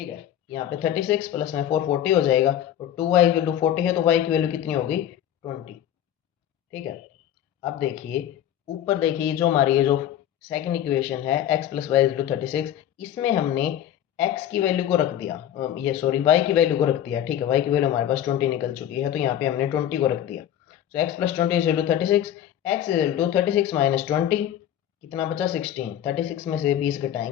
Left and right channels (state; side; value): quieter; right; 11.0 dB